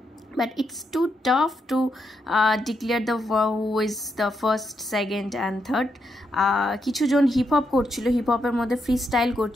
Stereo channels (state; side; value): normal; both; correlation 0.81